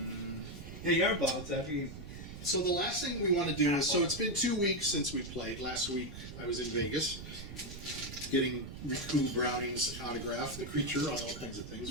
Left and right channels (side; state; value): right; noise; rumble, 11 dB below the sound